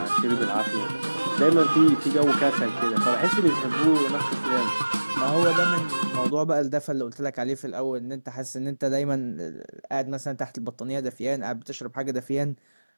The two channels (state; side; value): inverted; both; correlation -1.00